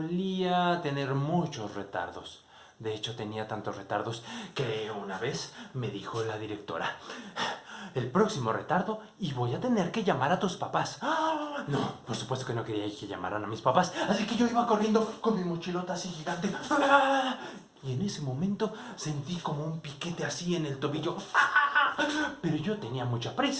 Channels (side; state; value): both; identical; correlation 1.00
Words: tener muchos retardos. De hecho, tenía tantos retardos que una vez me dijo la directora: el próximo retardo y voy a tener que llamar a tus papás. No, por supuesto que no quería que llamaran a mis papás, así que yo iba corriendo con mi mochilota así gigante. Y en ese momento sentí como un piquete así en el tobillo. Pero yo tenía mucha